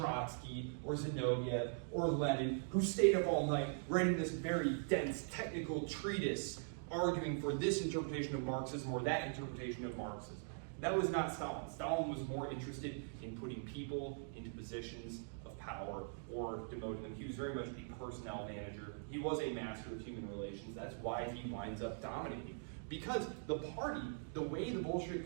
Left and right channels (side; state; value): left; silent; digital silence